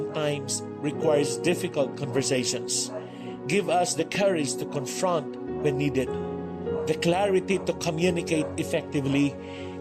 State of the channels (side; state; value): both; identical; correlation 1.00